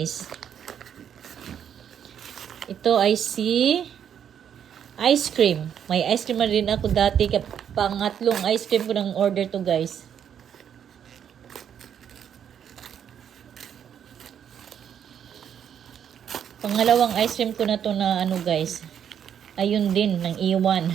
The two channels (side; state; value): left; quieter; 8.8 dB